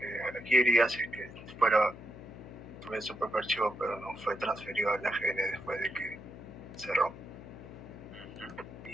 aquí iría si es que tuviese su propio archivo, pero no fue transferido al AGN después de que cerró.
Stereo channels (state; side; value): noise; left; hum, 15 dB below the sound